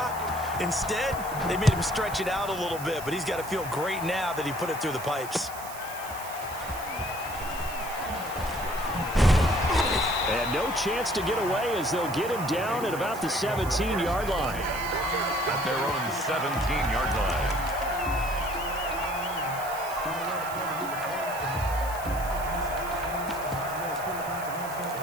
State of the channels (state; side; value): noise; right; hiss, 13 dB below the sound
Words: Instead, they made him stretch it out a little bit, but he's got to feel great now that he put it through the pipes. And no chance to get away as they'll get him down at about the 17-yard line. At their own 17-yard line.